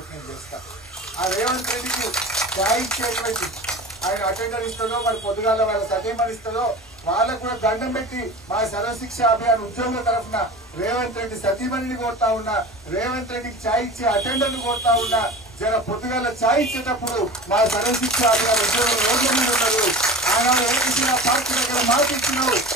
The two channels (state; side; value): normal; both; correlation 0.35